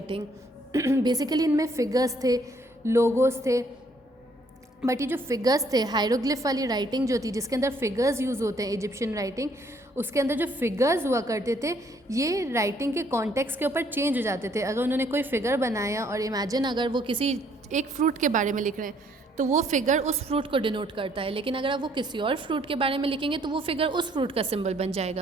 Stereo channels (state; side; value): normal; both; correlation 0.66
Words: बेसिकली इनमें फिगर्स थे, लोगोस थे, बट ये जो फिगर्स थे, हायरोग्लिफ वाली राइटिंग जो थी जिसके अंदर फिगर्स यूज़ होते हैं, इजिप्शियन राइटिंग, उसके अंदर जो फिगर्स हुआ करते थे ये राइटिंग के कॉन्टेक्स्ट के ऊपर चेंज हो जाते थे। अगर उन्होंने कोई फिगर बनाया और इमेजिन अगर वो किसी एक फ्रूट के बारे में लिख रहे हैं तो वो फिगर उस फ्रूट को डिनोट करता है, लेकिन अगर आप वो किसी और फ्रूट के बारे में लिखेंगे तो वो फिगर उस फ्रूट का सिंबल बन